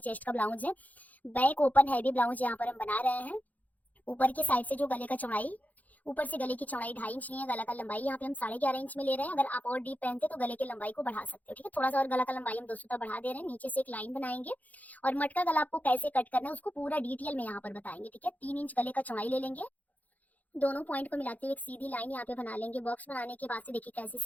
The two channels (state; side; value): late; right; 0.078 ms